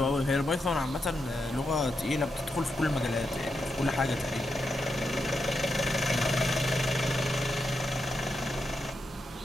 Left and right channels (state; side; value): normal; both; correlation 0.85